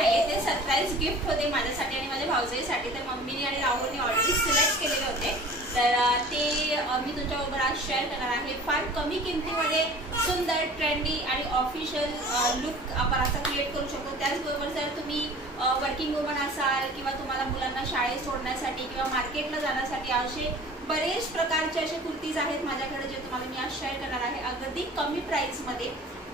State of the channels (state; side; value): normal; both; correlation 0.44